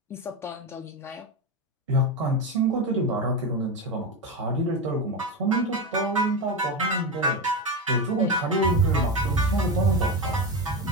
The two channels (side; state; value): both; normal; correlation 0.17